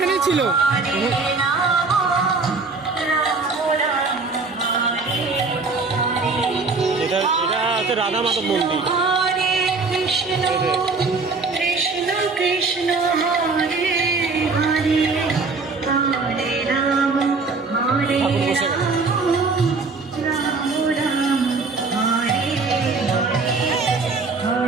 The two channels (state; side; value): quieter; left; 4.1 dB